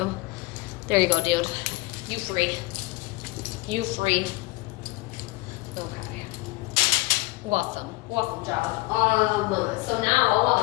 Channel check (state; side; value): quieter; right; 22.3 dB